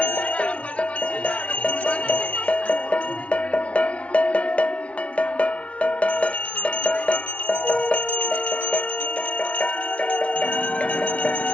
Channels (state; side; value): late; right; 0.063 ms